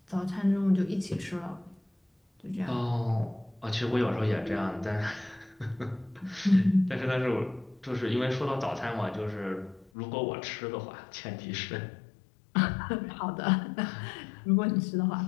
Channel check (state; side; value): drops out; right; at 9.9 s